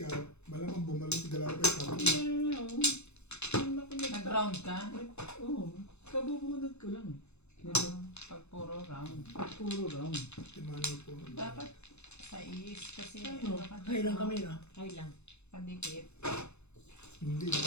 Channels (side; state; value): right; late; 0.81 ms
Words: malamang bumalik galaw kayo sa akin. Yeah, oh. Nag-round ka? Oo. Kabubunod ko lang. Pag puro round. Puro round. Timano po. Dapat sa is kasi Ano? Ay lang kami na. Ay lang. pandikit. Hindi,